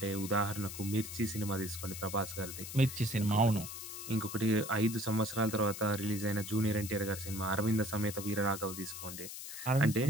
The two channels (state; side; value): noise; left; hiss, 9 dB below the sound